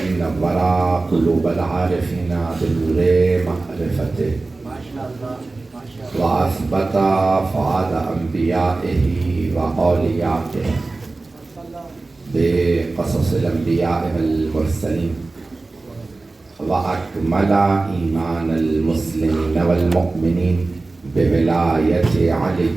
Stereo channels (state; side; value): quieter; left; 3.4 dB